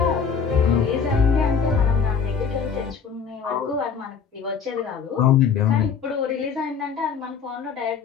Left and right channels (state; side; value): quieter; right; 6.4 dB